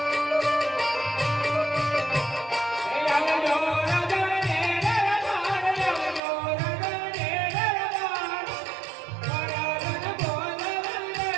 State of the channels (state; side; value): drops out; left; at 6.2 s